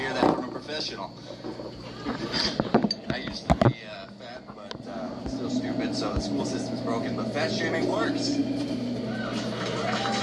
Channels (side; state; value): both; identical; correlation 1.00